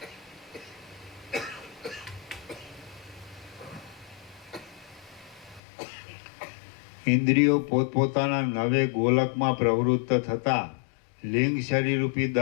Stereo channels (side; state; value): right; drops out; at 5.6 s